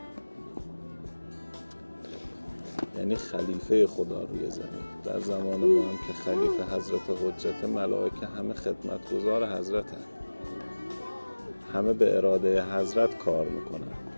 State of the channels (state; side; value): inverted; both; correlation -1.00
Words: یعنی خلیفه خدا روی زمین. در زمان ما هم که خلیفه حضرت حجت، ملائکه همه خدمتگزار حضرتن، همه به اراده حضرت کار میکنن،